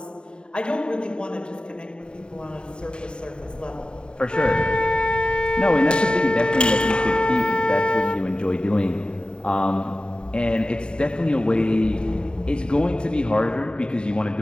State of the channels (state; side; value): late; right; 0.050 ms